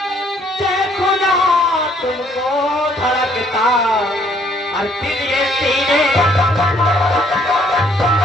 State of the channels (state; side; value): normal; both; correlation 0.65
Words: देखो ना तुमको धड़कता और दिल ये सीने।